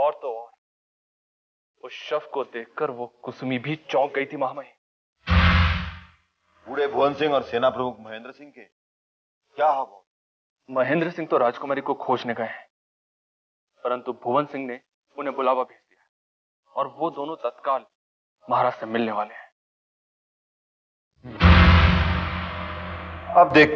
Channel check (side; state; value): both; identical; correlation 1.00